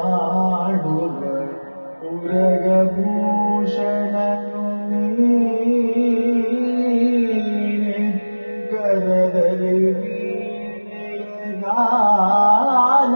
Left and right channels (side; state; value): both; inverted; correlation -1.00